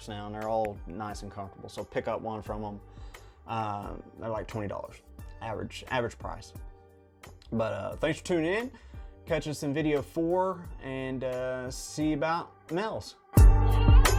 now, and they're all nice and comfortable. So pick up one from them. They're like $20 average price. But thanks for tuning in. Catch us in video 4, and see you about males.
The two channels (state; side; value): identical; both; correlation 1.00